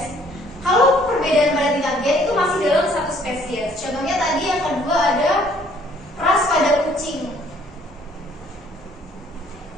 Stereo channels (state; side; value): normal; both; correlation 0.61